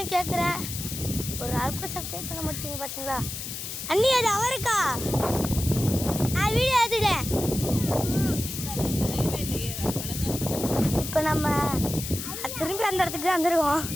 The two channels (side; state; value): left; noise; hiss, 7 dB below the sound